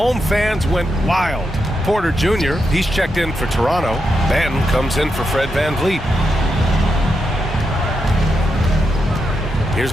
fans went wild. Porter Jr., he's checked in for Toronto. Banton comes in for Fred VanVleet. Here's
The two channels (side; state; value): both; normal; correlation 0.85